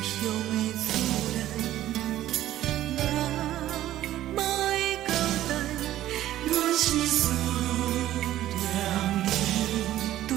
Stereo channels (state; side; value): quieter; left; 13.6 dB